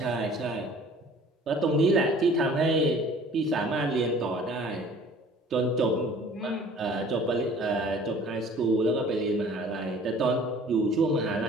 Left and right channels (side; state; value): both; normal; correlation 0.50